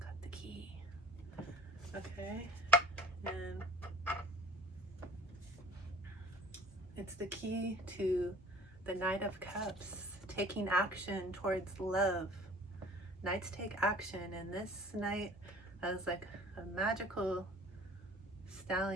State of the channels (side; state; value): both; normal; correlation 0.49